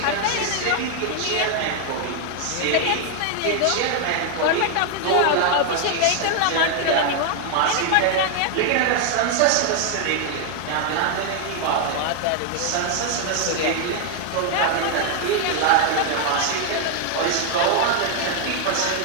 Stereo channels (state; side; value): different; both; correlation 0.00